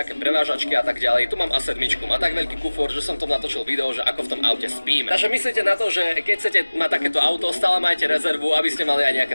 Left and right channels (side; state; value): both; inverted; correlation -1.00